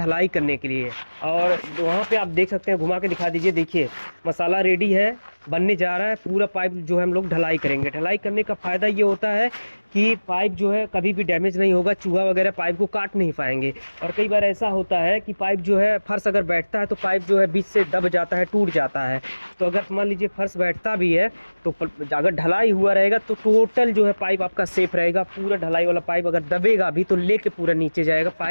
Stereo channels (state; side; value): inverted; both; correlation -1.00